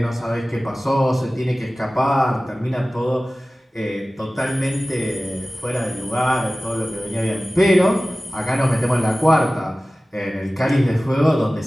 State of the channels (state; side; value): normal; both; correlation 0.97